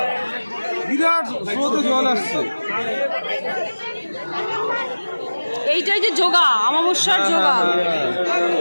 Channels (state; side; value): inverted; both; correlation -1.00